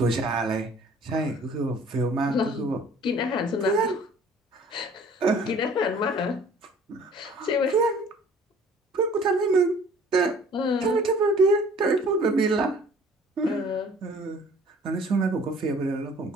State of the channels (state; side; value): normal; both; correlation 0.52